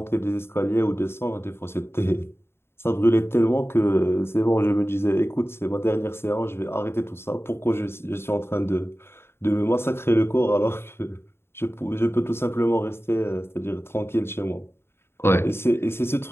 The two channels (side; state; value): right; late; 0.12 ms